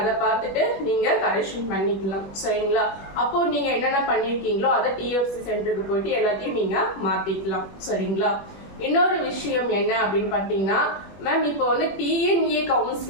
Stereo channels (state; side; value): late; right; 21 ms